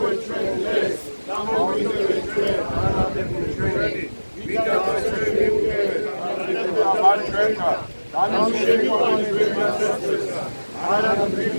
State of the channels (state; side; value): inverted; both; correlation -1.00